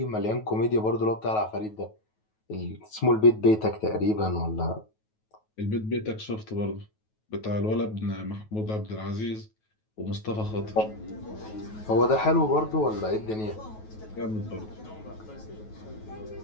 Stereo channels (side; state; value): right; late; 9.3 ms